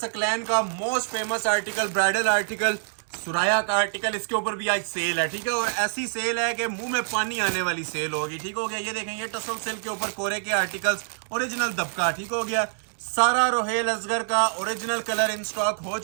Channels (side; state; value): left; silent; digital silence